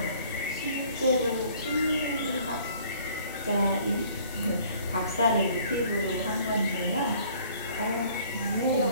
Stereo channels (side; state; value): both; inverted; correlation -0.56